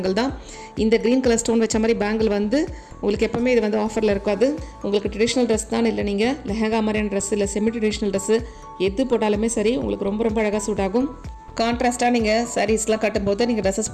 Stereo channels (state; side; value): identical; both; correlation 1.00